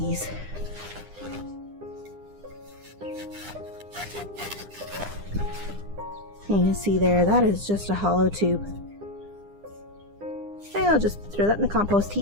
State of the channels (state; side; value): late; left; 9.9 ms